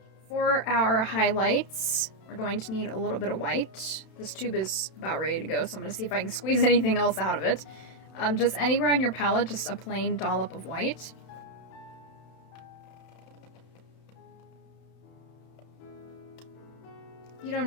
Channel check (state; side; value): late; right; 31 ms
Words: for our highlights, we're going to need a little bit of white. This tube is about ready to go, so I'm going to see if I can squeeze anything else out of it. Just anywhere on your palette, just a plain dollop of white. You don't